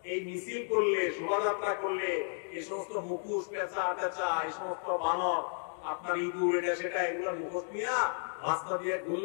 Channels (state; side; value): silent; right; 56 dB below the other